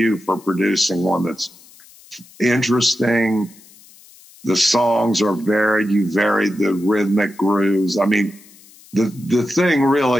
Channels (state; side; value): noise; left; hiss, 24 dB below the sound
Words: for producing one that's interesting. The songs are varied. You varied the rhythmic grooves. I mean, the thing